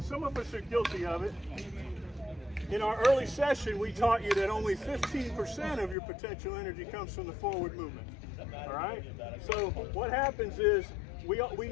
some of us are guilty of it. In our early session, we taught you that only 15% of your potential energy comes from the forward movement. All right, so what happens is we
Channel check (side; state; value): right; drops out; at 6.0 s